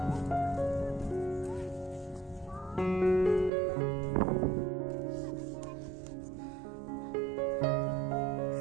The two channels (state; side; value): drops out; left; at 3.5 s